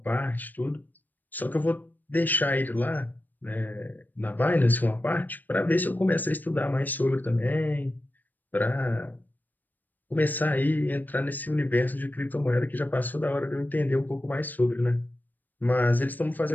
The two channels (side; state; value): right; late; 0.086 ms